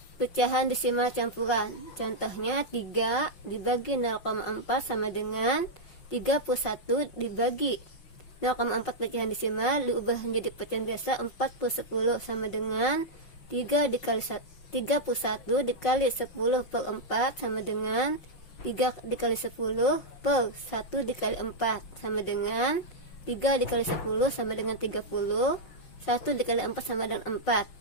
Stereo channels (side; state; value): right; late; 5.5 ms